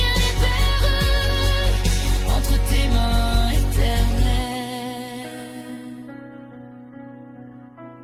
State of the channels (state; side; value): identical; both; correlation 1.00